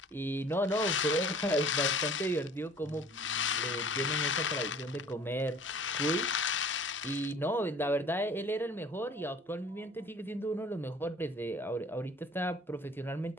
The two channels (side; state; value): both; normal; correlation 0.50